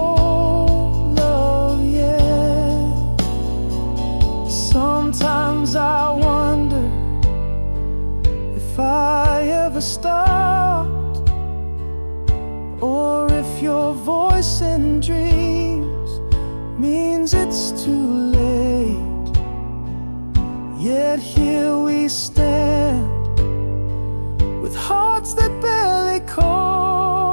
love yet? Sometimes I wonder if I ever stopped, or if your voice in dreams means it's too late. Yet here we stand with hearts that barely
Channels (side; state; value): both; inverted; correlation -1.00